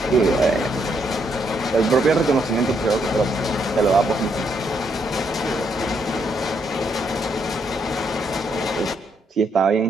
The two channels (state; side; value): normal; both; correlation 0.75